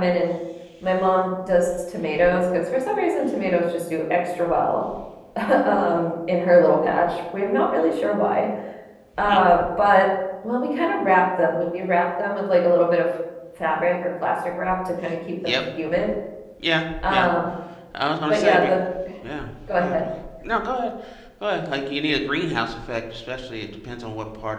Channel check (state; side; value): identical; both; correlation 1.00